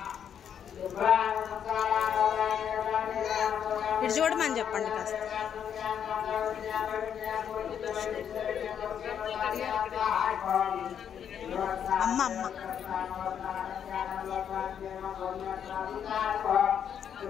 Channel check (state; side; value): quieter; right; 8.5 dB